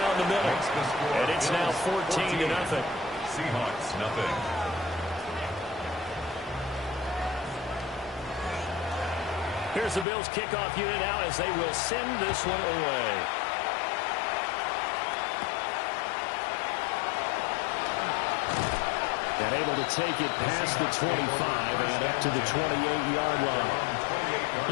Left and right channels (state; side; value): drops out; right; at 10.1 s